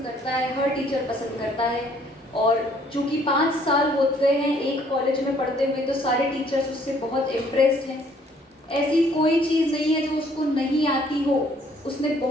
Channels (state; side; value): normal; both; correlation 0.62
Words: करता है, हर टीचर पसंद करता है। और चूँकि 5 साल होते गए हैं एक कॉलेज में पढ़ते हुए, तो सारे टीचर्स उससे बहुत इम्प्रेस्ड हैं। ऐसी कोई चीज़ नहीं है जो उसको नहीं आती हो। उसने